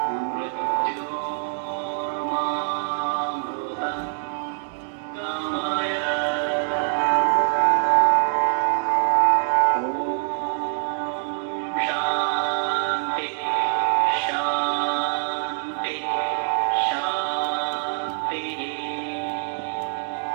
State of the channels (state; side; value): silent; left; digital silence